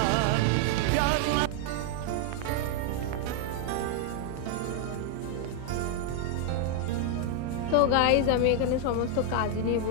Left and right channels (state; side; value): different; both; correlation 0.00